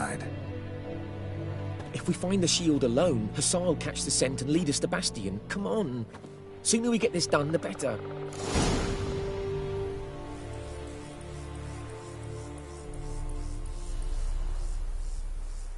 If we find the shield alone, Hussar will catch the scent and lead us to Bastion. Come on. Sooner we get this done, the better.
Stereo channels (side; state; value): both; identical; correlation 1.00